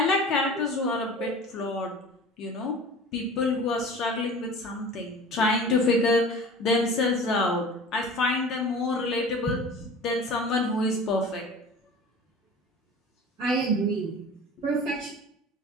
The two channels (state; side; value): normal; both; correlation 0.39